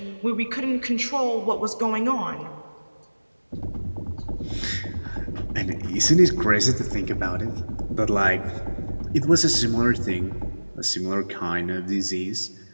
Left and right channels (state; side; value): inverted; both; correlation -1.00